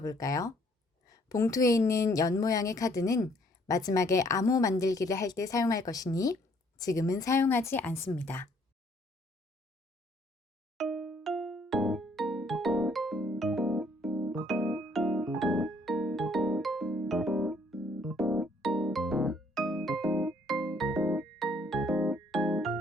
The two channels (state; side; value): normal; both; correlation 0.64